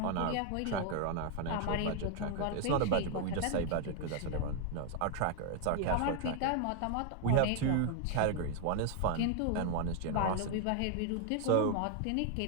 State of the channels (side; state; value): both; different; correlation 0.00